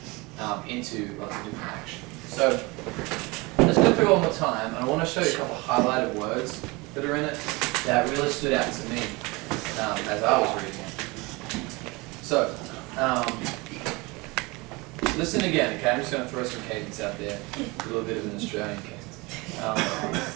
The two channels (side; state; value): left; quieter; 24.9 dB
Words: into lots of different action. So let's go through it one more time, and I want to show you a couple of highlighted words that are in it that really stood out to me as I was reading it. So, listen again, okay? I'm just going to throw some cadence out there, a little bit of an Australian cadence.